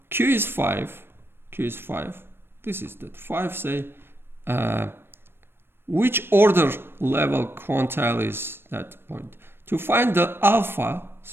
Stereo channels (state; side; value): late; left; 0.11 ms